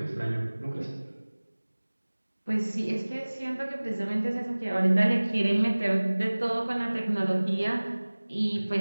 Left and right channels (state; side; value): inverted; both; correlation -1.00